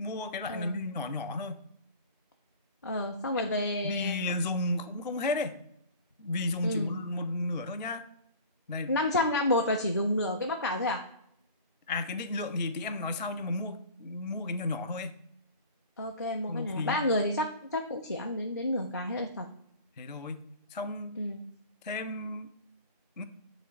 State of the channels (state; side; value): inverted; both; correlation -0.40